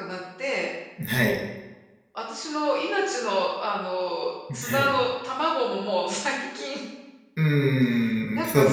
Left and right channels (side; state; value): both; identical; correlation 1.00